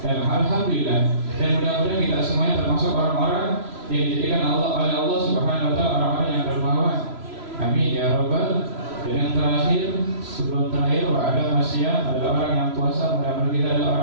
Dan alhamdulillah, dan mudah-mudahan kita semuanya termasuk orang-orang yang dijadikan Allah oleh Allah Subhanahu wa ta'ala orang-orang yang dermawan. Amin ya rabbal. Dan yang terakhir, sebelum terakhir, ada masyarakat adalah orang yang puasa. Mudah-mudahan kita adalah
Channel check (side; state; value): left; late; 3.0 ms